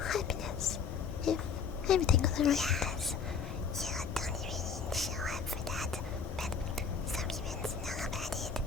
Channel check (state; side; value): quieter; right; 6.0 dB